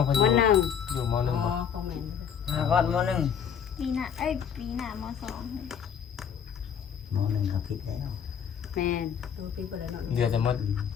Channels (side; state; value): right; quieter; 7.9 dB